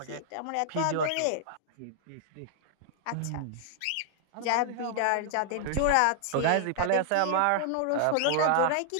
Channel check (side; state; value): both; different; correlation -0.01